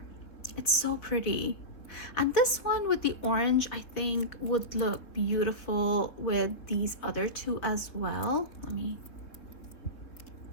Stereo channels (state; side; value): late; right; 3.8 ms